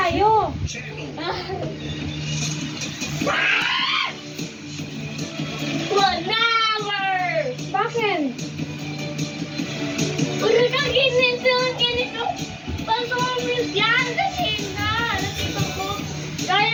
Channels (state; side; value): identical; both; correlation 1.00